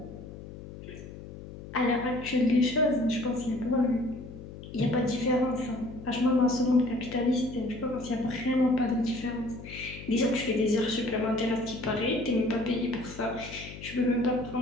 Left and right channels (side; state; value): left; noise; hum, 13 dB below the sound